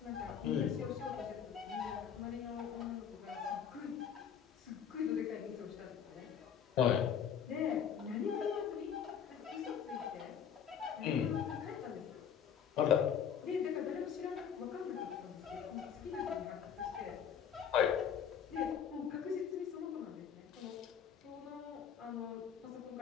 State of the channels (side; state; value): right; quieter; 8.0 dB